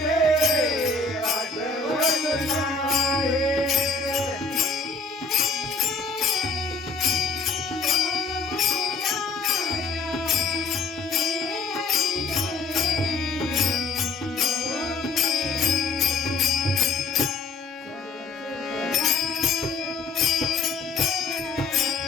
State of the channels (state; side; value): quieter; right; 4.1 dB